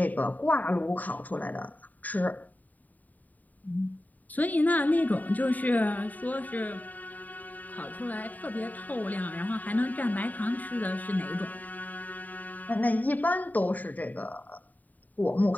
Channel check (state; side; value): late; right; 0.080 ms